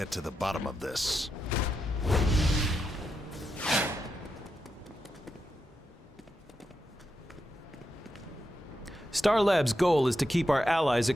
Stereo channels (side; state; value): both; normal; correlation 0.86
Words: to the bottom of this. Star Labs' goal is to keep our allies